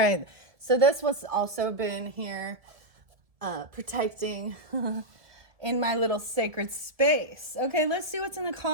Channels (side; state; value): left; late; 1.7 ms